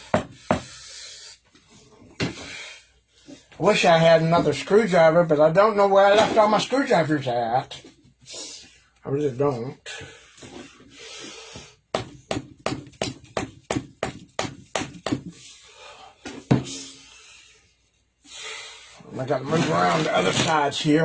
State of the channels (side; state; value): both; identical; correlation 1.00